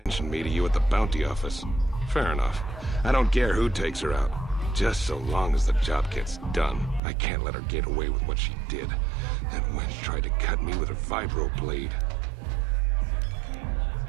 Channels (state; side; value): drops out; left; at 7.0 s